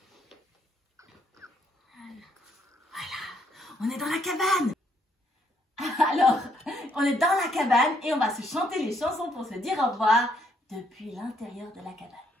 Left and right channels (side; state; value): both; normal; correlation 0.71